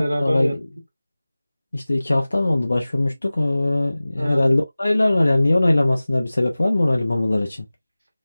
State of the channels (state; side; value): inverted; both; correlation -0.99